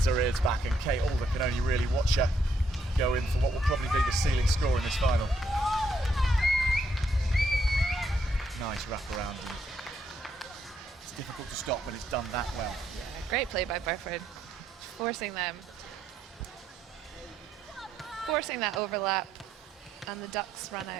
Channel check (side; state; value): both; normal; correlation 0.75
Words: her ears back, and Kate Alder can only really watch her go in for what will probably be the ceiling score in this final. Nice wraparound, and it's difficult to stop, but it's done that well. Yeah, great play by Burford, forcing that overlap, and the Ducks run